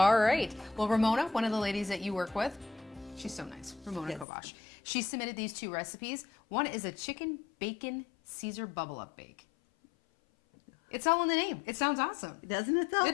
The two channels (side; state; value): right; drops out; at 4.2 s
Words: right. Well, Ramona, one of the ladies that you work with, she's so nice. Ramona Kovash. She submitted these 2 recipes. One is a chicken bacon Caesar bubble up bake. It's all in the name. It sounds awesome. Doesn't it though?